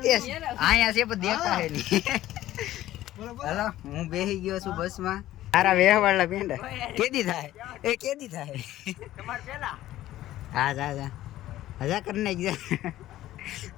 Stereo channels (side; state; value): right; quieter; 14.4 dB